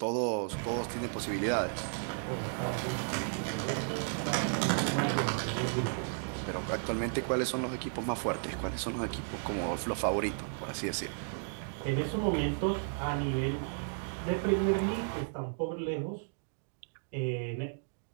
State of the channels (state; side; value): silent; left; digital silence